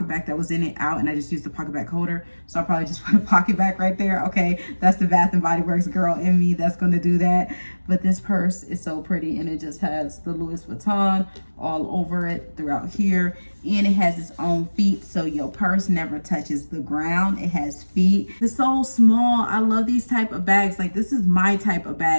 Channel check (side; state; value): both; inverted; correlation -1.00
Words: back that was in it out and I just used the pocket back holder. So I'll probably just put a pocket back right there. Okay, that's the Bath and Body Works girl in me that's going to do that. But this purse is so pretty and it just has the Louis Vuitton all over it throughout here. And it has its own feet, so your purse never touches the ground. It has feet. It's so small. I love these type of bags. Like, this is my type of